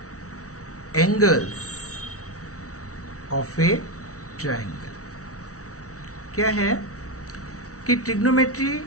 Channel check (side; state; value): right; late; 0.65 ms